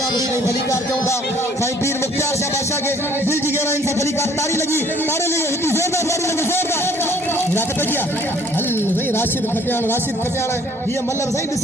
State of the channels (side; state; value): both; normal; correlation 0.58